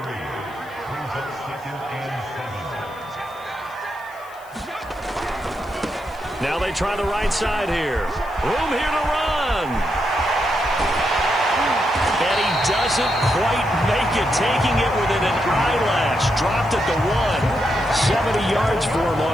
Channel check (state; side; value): noise; left; hiss, 26 dB below the sound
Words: Now they try the right side here. Room here to run. And he doesn't quite make it, taking it within an eyelash. Dropped at the 1. 70 yards for him